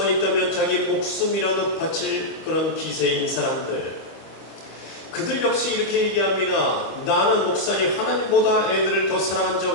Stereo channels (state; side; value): late; right; 25 ms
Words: 있다면 자기 목숨이라도 바칠 그런 기세인 사람들, 그들 역시 이렇게 얘기합니다. 나는 목사님 하나님보다 애들을 더 사랑한 적